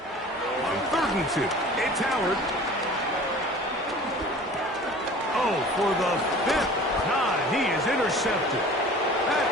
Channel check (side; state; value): both; normal; correlation 0.44